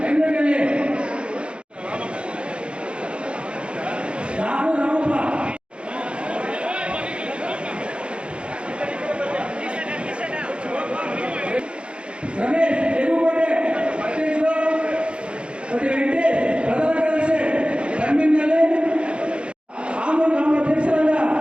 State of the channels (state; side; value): late; left; 0.057 ms